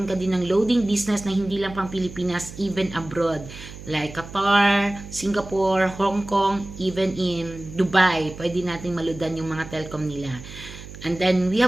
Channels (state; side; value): noise; right; hum, 14 dB below the sound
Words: ka din ng loading business na hindi lang pang Pilipinas, even abroad. Like Qatar, Singapore, Hong Kong, even in Dubai. Pwede natin maludan yung mga telcom nila. And then, we